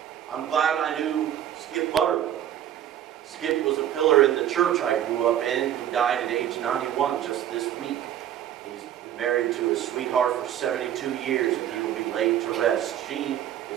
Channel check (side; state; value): left; quieter; 11.1 dB